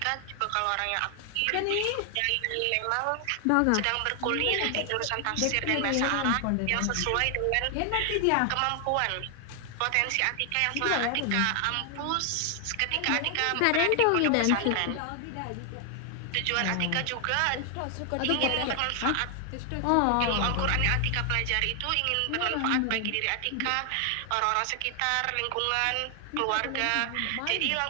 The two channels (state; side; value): different; both; correlation 0.00